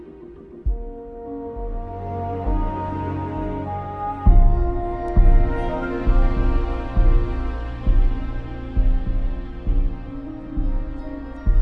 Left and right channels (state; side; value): identical; both; correlation 1.00